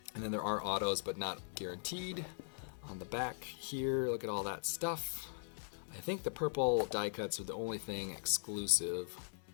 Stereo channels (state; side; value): silent; right; digital silence